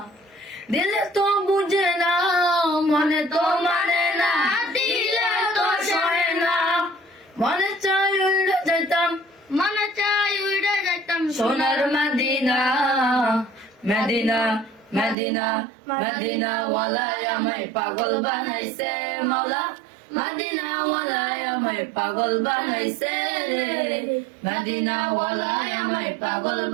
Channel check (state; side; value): drops out; left; at 15.2 s